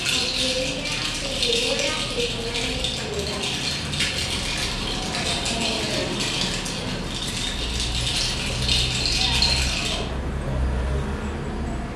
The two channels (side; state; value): both; identical; correlation 1.00